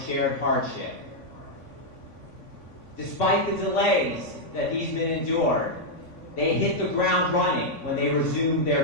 shared hardship. Despite the delays that these men endured, they hit the ground running when they resumed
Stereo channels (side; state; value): right; late; 3.5 ms